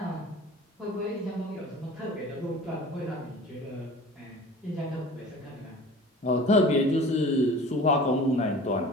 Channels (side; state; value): both; normal; correlation 0.42